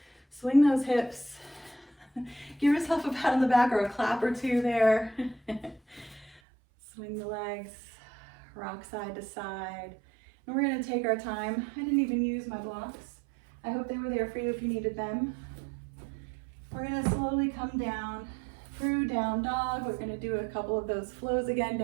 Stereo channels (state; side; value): drops out; left; at 6.4 s